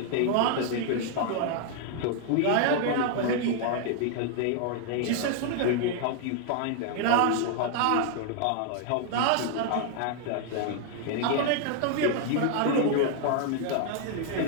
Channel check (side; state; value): both; different; correlation 0.00